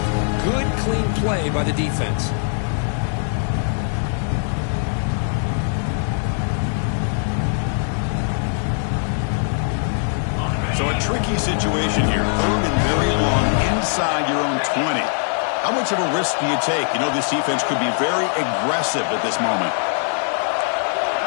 Good, clean play by the defense. So a tricky situation here. 3rd and very long inside your own 20. How much of a risk do you take? You know this defense could be very aggressive at this moment.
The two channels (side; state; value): right; silent; 62 dB below the other